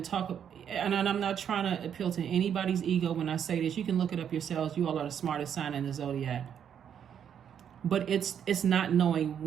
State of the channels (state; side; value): quieter; left; 8.6 dB